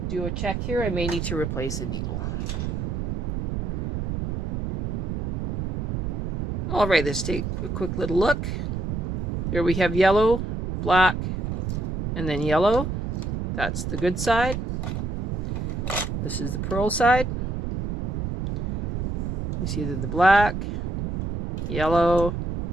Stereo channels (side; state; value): right; noise; rumble, 1 dB below the sound